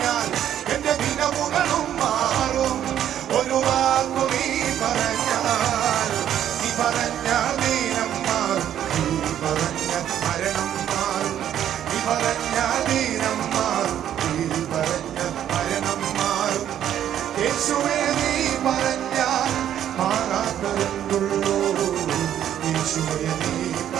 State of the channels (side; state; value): left; quieter; 10.6 dB